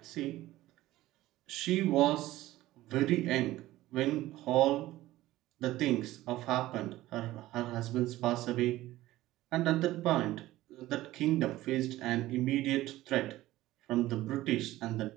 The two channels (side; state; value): left; quieter; 16.3 dB